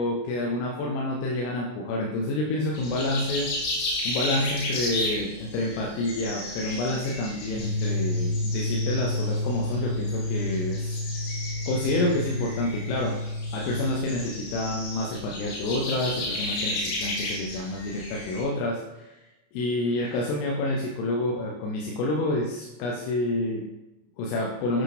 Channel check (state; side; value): late; right; 33 ms